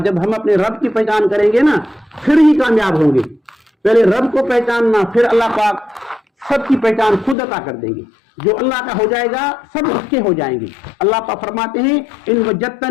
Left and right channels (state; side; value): drops out; right; at 7.4 s